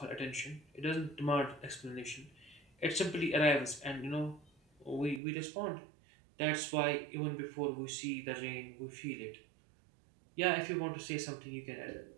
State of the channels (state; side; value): drops out; left; at 5.2 s